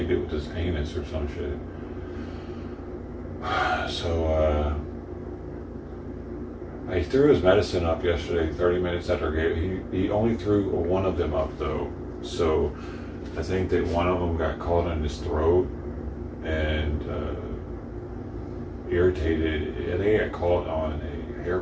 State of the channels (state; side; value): identical; both; correlation 1.00